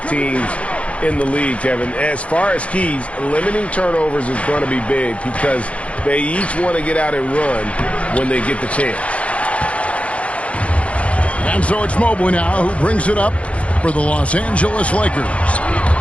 teams in the league, Kevin. As far as keys, limiting turnovers is going to be big because they each want to get out and run when they get the chance. And so it's Mobley now who brings it up for the Los Angeles Lakers.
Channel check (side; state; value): right; late; 0.063 ms